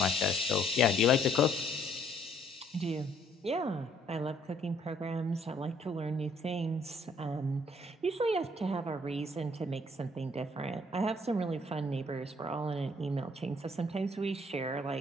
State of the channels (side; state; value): both; normal; correlation 0.64